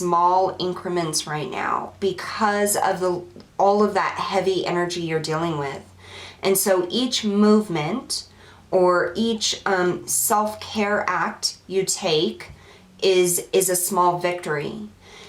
increments right now because of all of that heavy energy you're dealing with. And so each movement or each self-care act you take is a small victory.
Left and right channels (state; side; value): identical; both; correlation 1.00